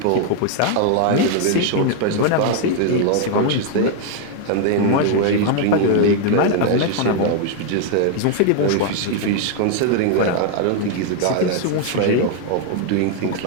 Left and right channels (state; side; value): different; both; correlation 0.00